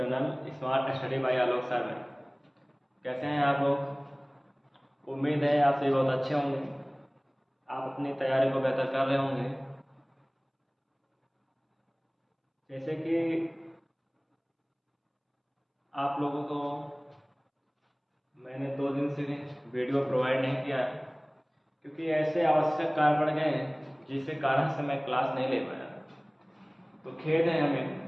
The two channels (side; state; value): both; identical; correlation 1.00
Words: smart study bye आलोक सर में। कैसे हैं आप लोग? उम्मीद है आप सभी बहुत अच्छे होंगे। आप अपनी तैयारी को बेहतर कर रहे होंगे। जैसे कि आप लोगों को मैंने 2 दिन से वीडियो प्रोवाइड नहीं किया है, क्योंकि ऐसे आवश्यक कार्य पड़ गए हैं जिसके कारण से मैं क्लास नहीं ले पाया। तो खेद है